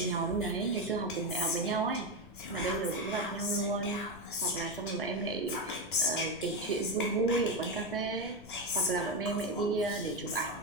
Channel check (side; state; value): left; noise; rumble, 20 dB below the sound